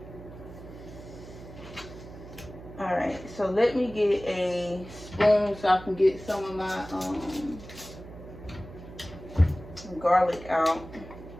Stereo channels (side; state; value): right; noise; hum, 15 dB below the sound